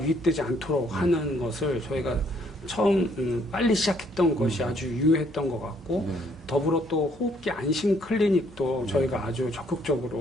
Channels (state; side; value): normal; both; correlation 0.66